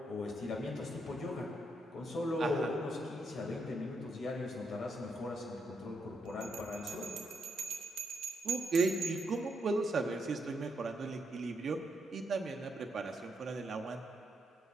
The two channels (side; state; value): both; normal; correlation 0.78